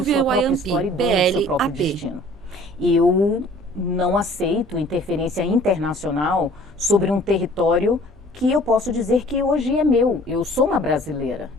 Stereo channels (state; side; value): normal; both; correlation 0.52